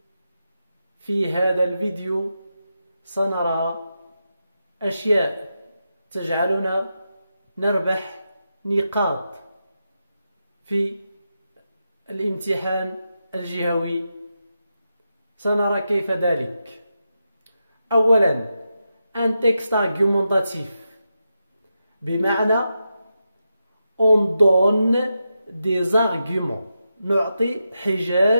الفيديو سنرى أشياء تجعلنا نربح نقاط في الامتحان الجهوي. سنرى كيف ذلك. أولا un texte argumentatif، بمعنى on donne des arguments، نعطي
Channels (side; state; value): both; inverted; correlation -0.88